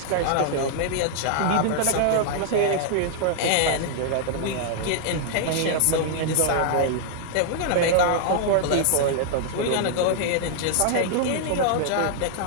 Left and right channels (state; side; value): different; both; correlation 0.00